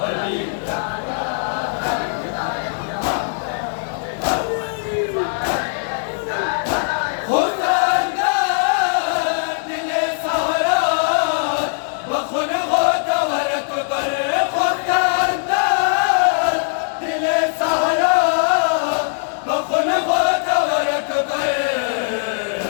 अली खुदा दिले सारा बखुन हो दवर अकबर खुदा दिले सारा बखुन हो दवर अकबर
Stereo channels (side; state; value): right; silent; digital silence